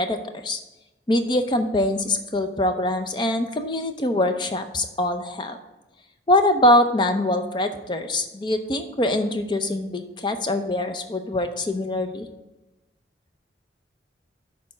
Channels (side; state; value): both; normal; correlation 0.30